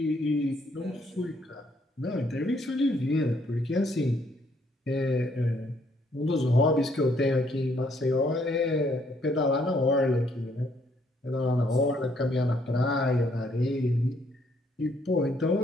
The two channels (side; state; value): both; normal; correlation 0.68